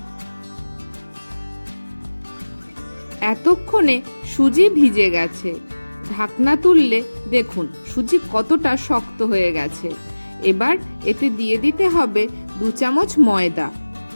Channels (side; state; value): both; inverted; correlation -1.00